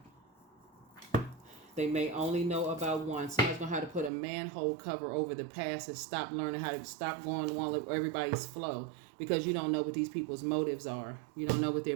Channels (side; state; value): left; drops out; at 4.1 s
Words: Someone's going to have to put a manhole cover over the past and stop learning how to stop going along with everybody's flow, because you don't know what these people's motives are. You don't know what their